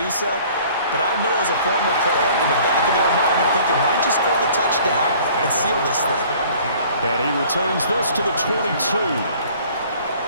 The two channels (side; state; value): both; inverted; correlation -0.52